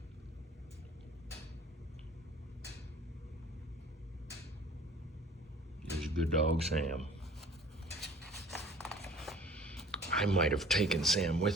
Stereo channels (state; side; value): normal; both; correlation 0.48